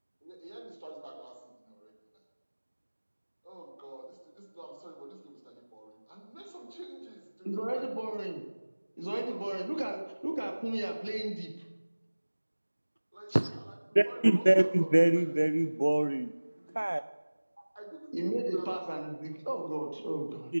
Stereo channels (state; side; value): inverted; both; correlation -1.00